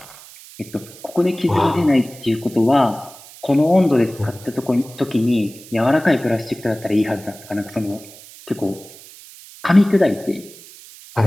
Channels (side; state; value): right; noise; hiss, 19 dB below the sound